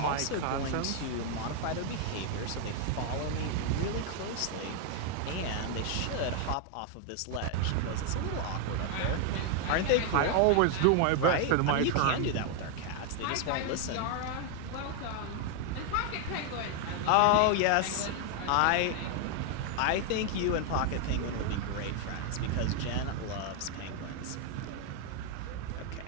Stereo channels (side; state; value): both; different; correlation 0.01